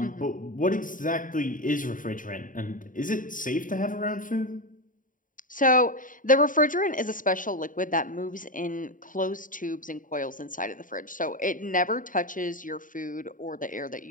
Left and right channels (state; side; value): late; right; 0.39 ms